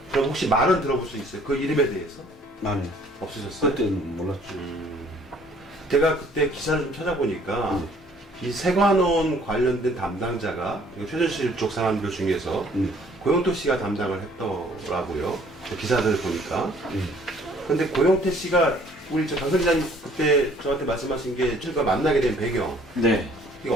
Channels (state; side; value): normal; both; correlation 0.58